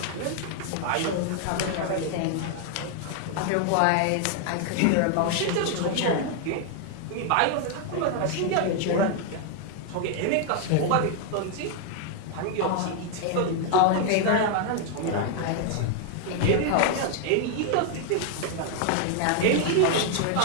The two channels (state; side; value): different; both; correlation 0.00